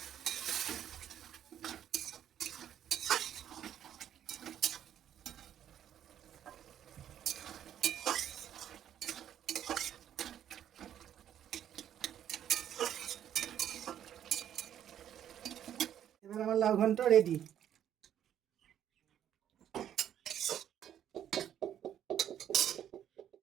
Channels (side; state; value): left; quieter; 10.3 dB